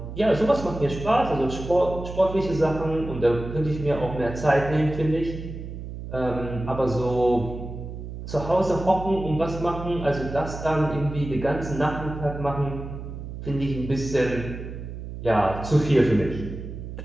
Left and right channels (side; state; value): right; noise; hum, 9 dB below the sound